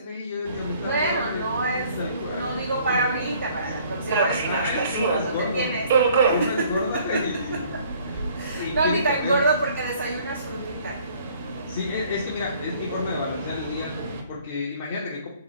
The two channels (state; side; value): inverted; both; correlation -0.58